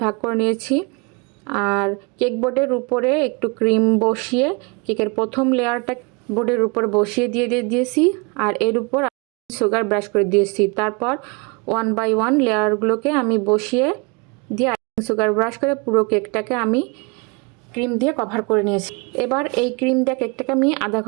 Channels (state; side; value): quieter; left; 30.5 dB